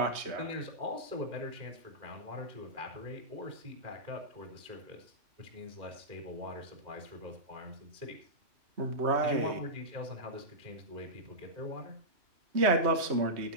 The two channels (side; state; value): left; late; 3.1 ms